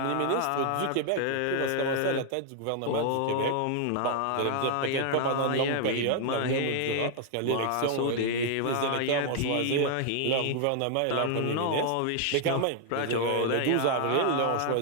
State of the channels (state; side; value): different; both; correlation 0.00